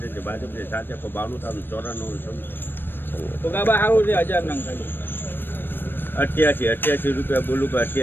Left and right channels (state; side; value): late; right; 0.096 ms